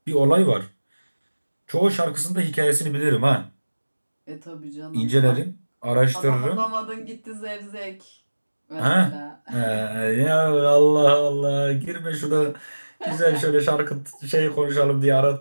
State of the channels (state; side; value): inverted; both; correlation -1.00